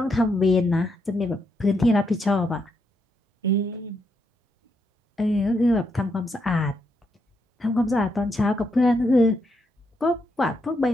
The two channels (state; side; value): normal; both; correlation 0.79